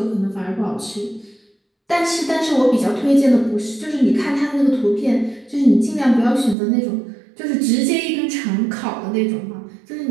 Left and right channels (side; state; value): left; drops out; at 6.6 s